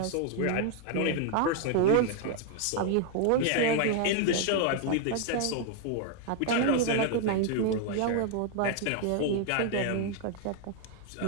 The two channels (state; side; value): different; both; correlation 0.00